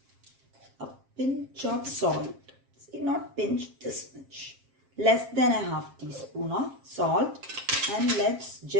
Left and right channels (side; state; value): left; late; 7.5 ms